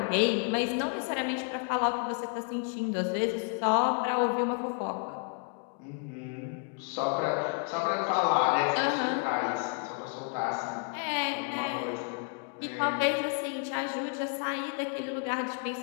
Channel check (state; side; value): quieter; right; 39.5 dB